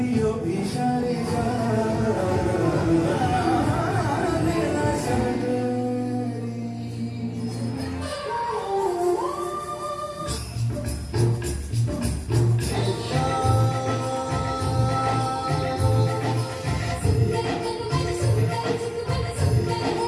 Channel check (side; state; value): both; identical; correlation 1.00